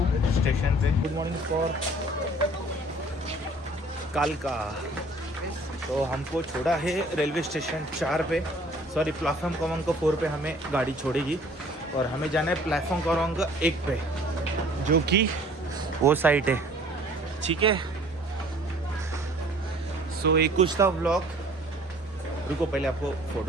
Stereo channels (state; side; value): normal; both; correlation 0.53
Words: स्टेशन पे। गुड मॉर्निंग फॉर कालका। तो हमको छोड़ा है रेलवे स्टेशन 4 पे, प्लेटफॉर्म क्रमांक 4 पे हमें गाड़ी छोड़ेगी। और हमें जाना है प्लेटफॉर्म क्रमांक 1 पे, जो कि वो साइट है, ठीक है। सो एक कुछ था व्लॉग। रुको पहले आपको